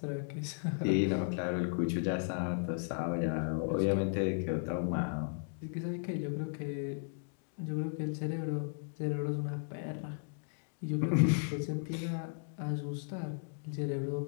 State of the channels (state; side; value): silent; right; digital silence